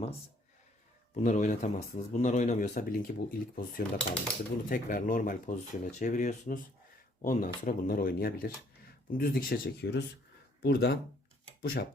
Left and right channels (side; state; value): both; normal; correlation 0.63